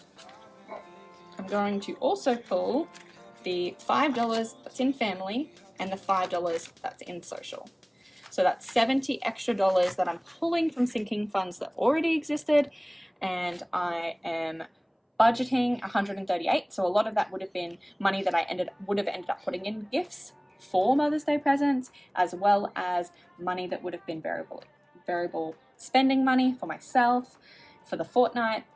I'm going to also pull the $5 that's in family and the $5 that's in social. So that's $70 extra that I'm pulling from sinking funds that already existed, and I am budgeting $138. So a lot of that would have been money that I would have ended up putting in gifts for Mother's Day presents, as well as money that would have been variable spending money for myself, for the fortnight,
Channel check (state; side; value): identical; both; correlation 1.00